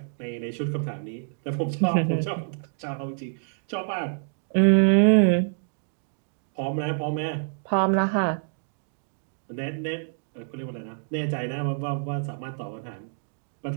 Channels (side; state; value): left; silent; digital silence